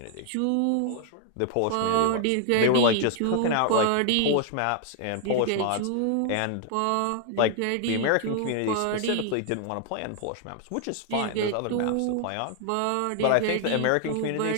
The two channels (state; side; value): different; both; correlation 0.00